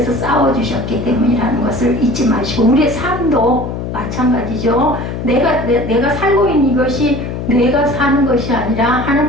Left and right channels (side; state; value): left; noise; hum, 6 dB below the sound